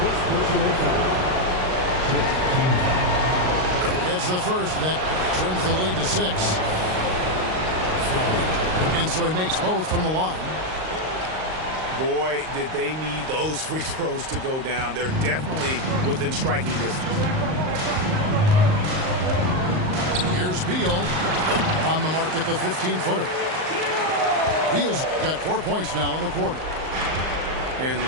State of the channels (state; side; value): late; left; 38 ms